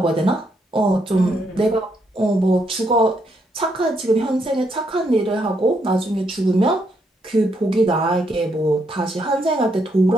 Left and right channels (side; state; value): both; normal; correlation 0.76